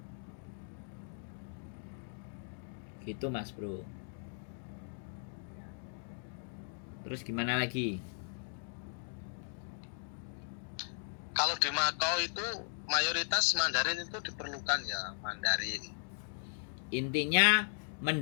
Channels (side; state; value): right; silent; digital silence